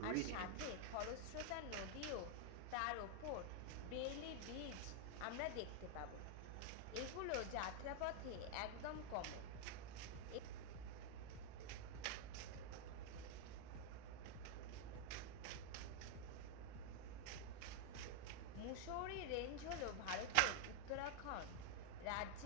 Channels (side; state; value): both; different; correlation 0.00